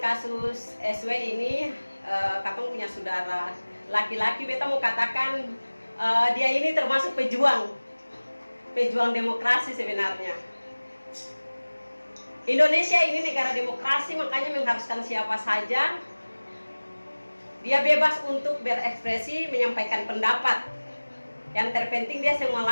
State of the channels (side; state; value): both; inverted; correlation -1.00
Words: kasus SW ini, Kakong punya saudara laki-laki, beta mau katakan dia ini termasuk pejuang demokrasi sebenarnya. Indonesia ini negara demokrasi, makanya mengharuskan siapa saja dia bebas untuk berekspresi, menyampaikan pendapat. Yang terpenting dia yang